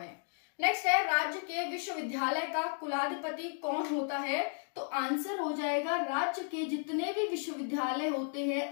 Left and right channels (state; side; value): silent; right; 55 dB below the other